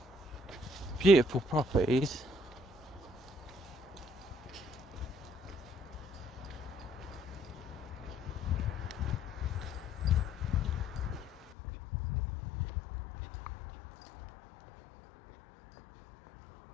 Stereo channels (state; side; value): drops out; right; at 11.5 s